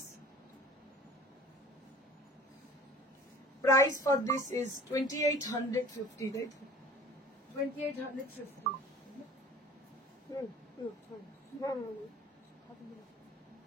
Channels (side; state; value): both; normal; correlation 0.45